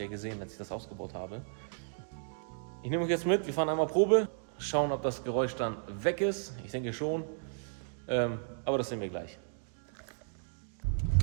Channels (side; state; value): left; silent; digital silence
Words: ja gesehen, als ich das ausgebaut habe. Ich nehme euch jetzt mit, wir fahren einmal Probe, schauen, ob das Geräusch dann weg ist. Ich denke schon, aber das sehen wir gleich.